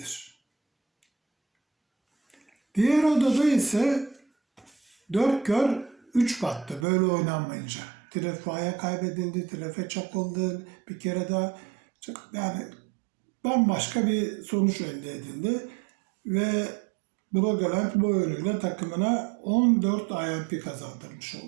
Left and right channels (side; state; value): left; drops out; at 6.9 s